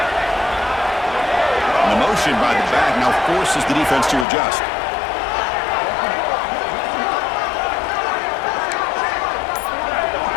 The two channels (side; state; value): right; drops out; at 4.2 s